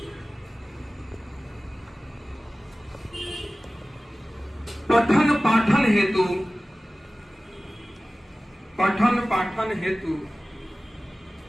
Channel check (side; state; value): both; normal; correlation 0.97